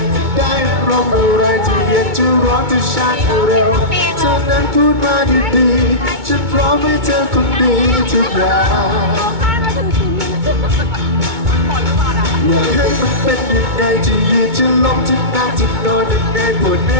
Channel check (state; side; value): late; left; 2.2 ms